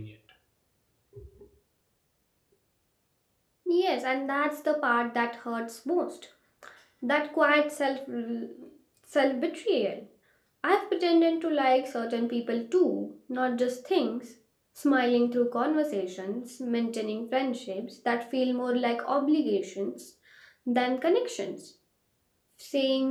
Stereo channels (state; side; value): identical; both; correlation 1.00